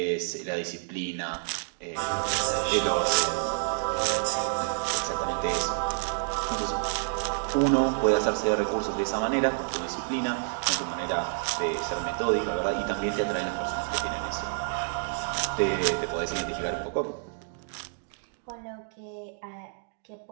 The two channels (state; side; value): silent; left; digital silence